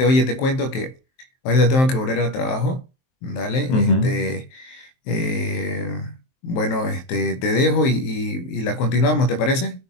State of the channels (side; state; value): right; late; 23 ms